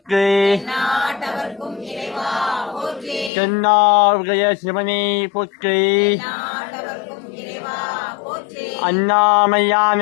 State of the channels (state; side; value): drops out; right; at 3.3 s